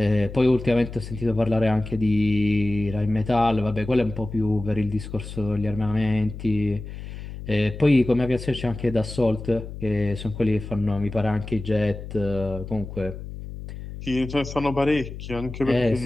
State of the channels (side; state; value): left; noise; hum, 10 dB below the sound